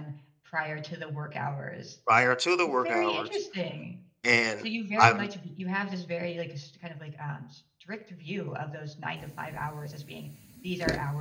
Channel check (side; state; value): both; identical; correlation 1.00